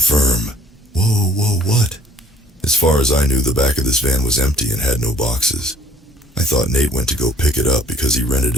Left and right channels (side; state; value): both; normal; correlation 0.56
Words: Whoa, what? As far as I knew, the back of this van was empty and had no boxes. I thought Nate went to go pick it up because he rented